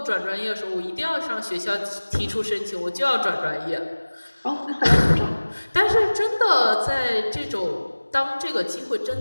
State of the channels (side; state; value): both; inverted; correlation -1.00